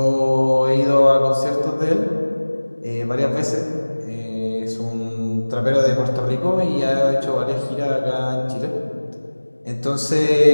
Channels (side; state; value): both; inverted; correlation -1.00